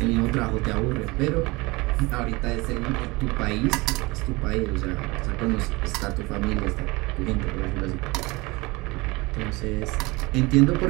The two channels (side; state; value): left; quieter; 23.9 dB